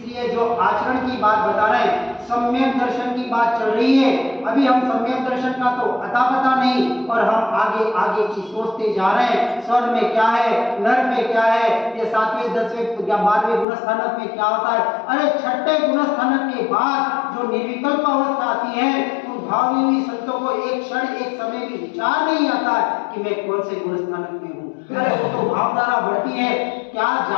जो आचरण की बात बता रहे हैं, सम्यक दर्शन की बात चल रही है। अभी हम सम्यक दर्शन का तो अता पता नहीं, और हम आगे आगे की सोचते जा रहे हैं, स्वर्ग में क्या है, नरक में क्या है, ये 7वें 10वें या 12वें गुणस्थानक में क्या होता है। अरे 6ठे गुणस्थानक के बाद जो निर्विकल्प अवस्था आती है, उन भावी संतों को एक क्षण एक समय भी विचार नहीं आता है कि मैं कौन से गुणस्थानक में हूँ। अरे वो तो भावधारा बढ़ती है, क्या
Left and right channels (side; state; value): right; drops out; at 13.7 s